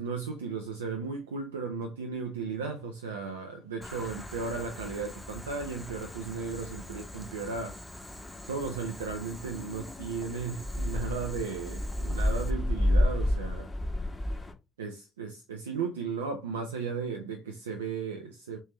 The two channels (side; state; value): both; normal; correlation 0.51